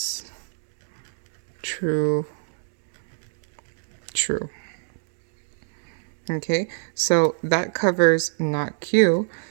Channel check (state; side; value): silent; left; digital silence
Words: true, true. Okay, so that covers not Q.